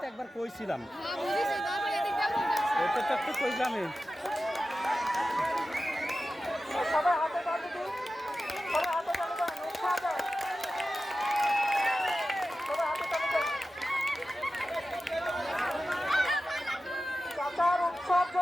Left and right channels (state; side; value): normal; both; correlation 0.94